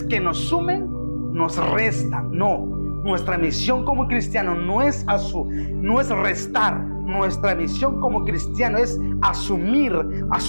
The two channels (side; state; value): both; inverted; correlation -1.00